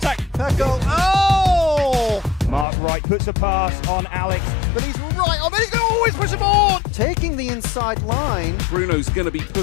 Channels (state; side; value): drops out; right; at 2.7 s